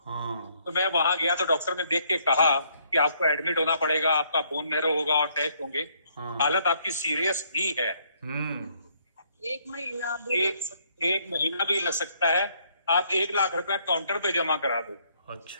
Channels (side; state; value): both; inverted; correlation -0.69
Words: तो मैं वहां गया तो डॉक्टर ने देख के कहा कि आपको एडमिट होना पड़ेगा, आपका बोन मैरो होगा और टेस्ट होंगे। हालत आपकी सीरियस ही है। 1 महीना भी लग सकता है। आप 1 लाख रुपया काउंटर पे जमा करा दो। अच्छा।